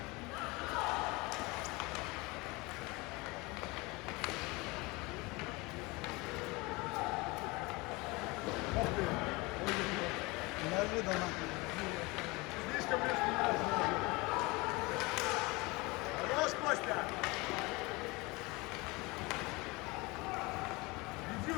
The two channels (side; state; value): right; quieter; 24.4 dB